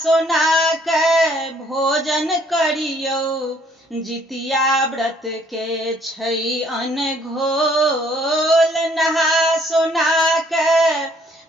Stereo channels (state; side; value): normal; both; correlation 0.63